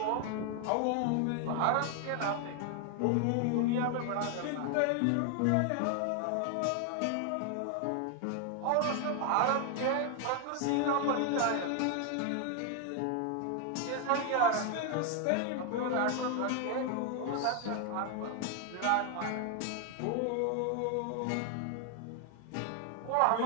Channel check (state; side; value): different; both; correlation 0.01